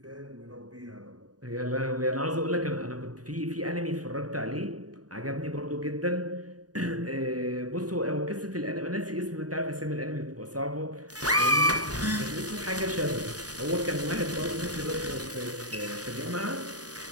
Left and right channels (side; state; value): left; late; 0.68 ms